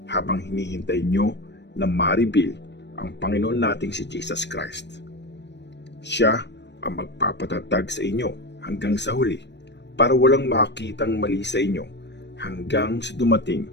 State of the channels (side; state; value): right; late; 0.51 ms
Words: habang hinihintay nyo na ma-reveal ang Panginoon nating si Jesus Christ. Siya ang magpapatatag sa inyo hanggang sa huli para walang makitang mali sa inyo hanggang sa dumating